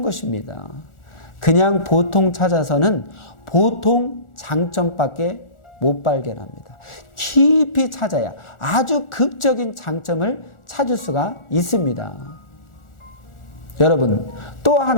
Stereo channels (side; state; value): right; late; 1.4 ms